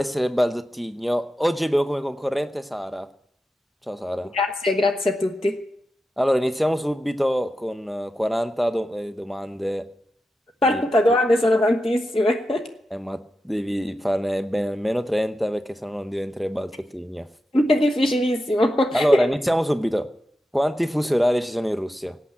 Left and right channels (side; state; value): both; normal; correlation 0.90